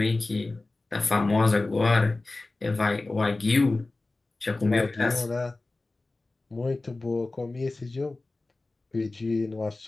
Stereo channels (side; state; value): right; quieter; 3.2 dB